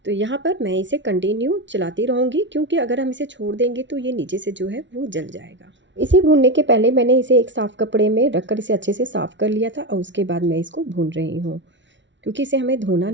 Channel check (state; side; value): late; left; 0.54 ms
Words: तो यहाँ पर मैं इसे कंटिन्यू चलाती रहूँगी, क्योंकि अगर हम इसे छोड़ देंगे तो ये नीचे से जो है वो जल जाएगा। इसे भूनने के पहले मैंने इसे एक साफ़ कपड़े में रखकर इसे अच्छे से साफ़ कर लिया था और उसके बाद मैं इसको भून रही हूँ, क्योंकि इसे हमें धोना